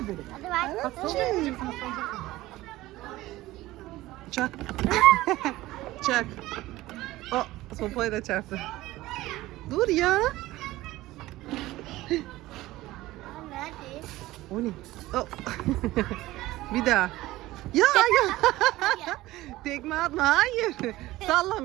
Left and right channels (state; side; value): quieter; left; 17.4 dB